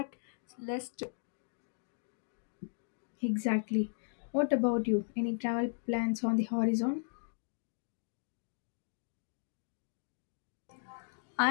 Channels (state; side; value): silent; right; digital silence